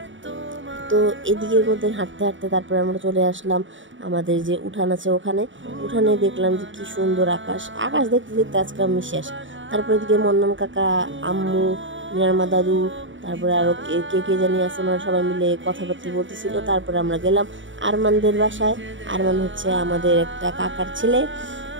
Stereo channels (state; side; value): late; left; 0.55 ms